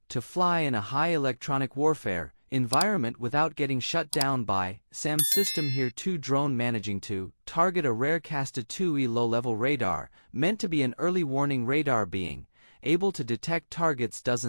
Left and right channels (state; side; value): inverted; both; correlation -1.00